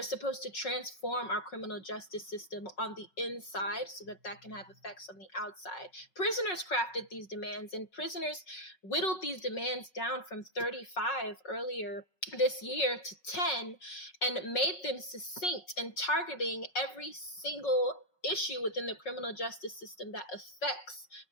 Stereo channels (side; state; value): right; late; 5.3 ms